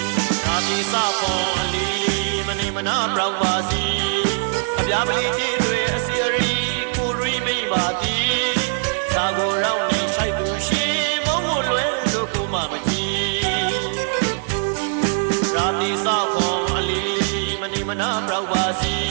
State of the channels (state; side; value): silent; left; 58 dB below the other